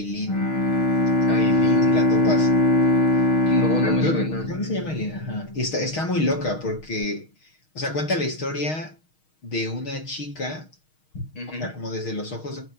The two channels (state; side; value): late; right; 6.4 ms